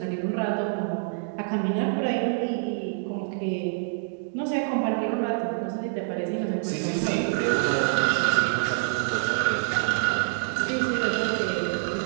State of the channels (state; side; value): silent; left; digital silence